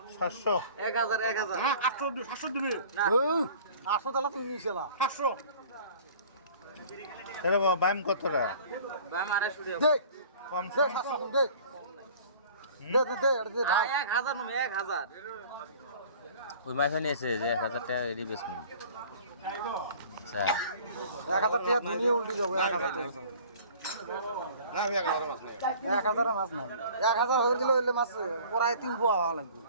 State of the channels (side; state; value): both; inverted; correlation -0.47